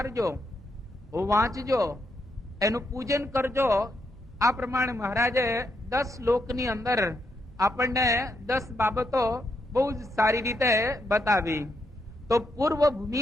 વાંચજો, એનું પૂજન કરજો. આ પ્રમાણે મહારાજે 10 શ્લોકની અંદર આપણને 10 બાબતો બહુ જ સારી રીતે બતાવી. તો પૂર્વ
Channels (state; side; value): normal; both; correlation 0.80